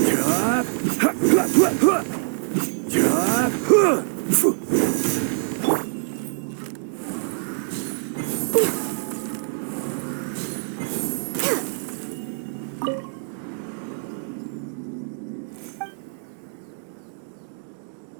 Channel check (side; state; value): left; silent; 62 dB below the other